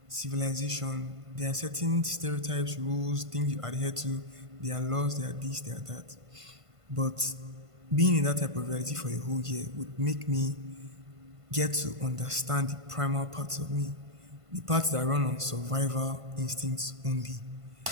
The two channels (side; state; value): left; late; 1.5 ms